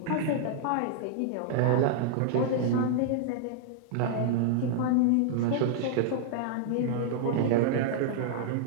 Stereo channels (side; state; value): both; different; correlation -0.01